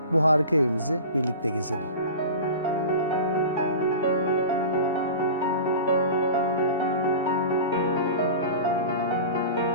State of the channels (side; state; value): both; inverted; correlation -0.34